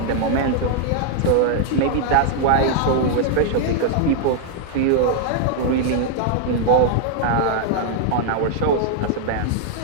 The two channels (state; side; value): different; both; correlation 0.00